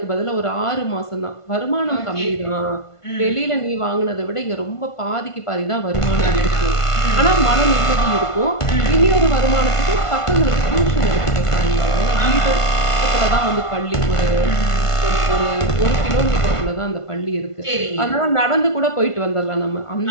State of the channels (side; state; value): right; late; 1.5 ms